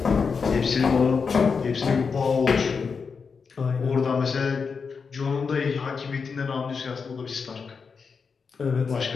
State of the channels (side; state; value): right; quieter; 5.4 dB